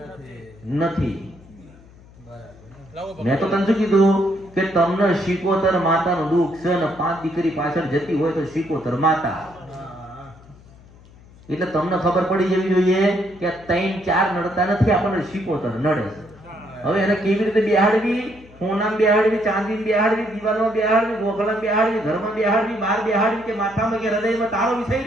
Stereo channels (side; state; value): left; noise; hum, 24 dB below the sound